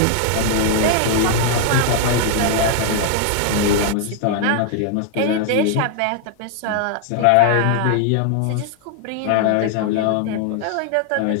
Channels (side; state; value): both; different; correlation 0.00